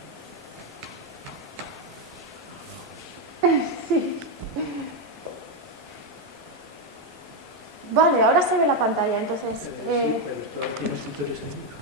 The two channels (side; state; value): both; normal; correlation 0.05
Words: Sí. Vale, ahora se ve la pantalla, entonces...